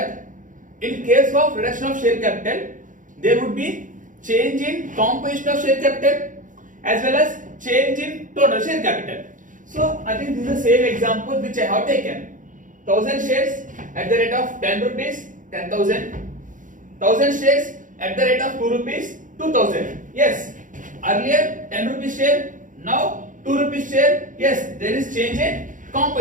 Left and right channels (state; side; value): late; left; 0.38 ms